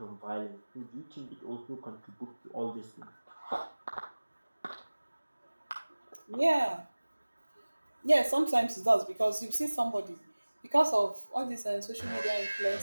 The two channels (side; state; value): both; inverted; correlation -1.00